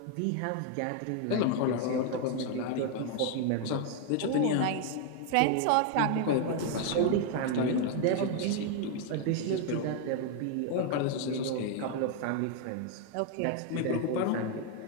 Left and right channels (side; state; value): both; different; correlation 0.00